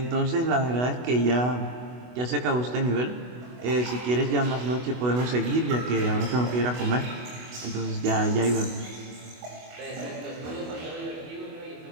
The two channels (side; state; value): left; late; 24 ms